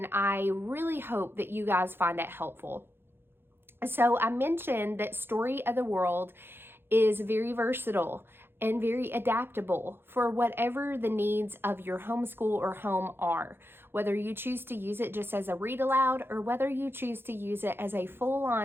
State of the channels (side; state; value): left; late; 0.11 ms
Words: I really hope that you guys find it helpful. So I mentioned that Story of the World is very versatile and very adaptable for whatever the needs of your homeschool or home are. Whether you choose to use it just as a read aloud or whether you choose to use it as a